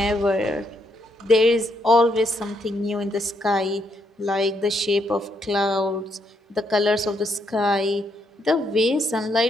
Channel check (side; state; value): both; normal; correlation 0.75